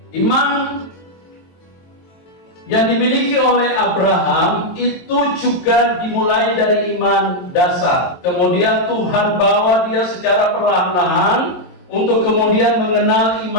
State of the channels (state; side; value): late; right; 22 ms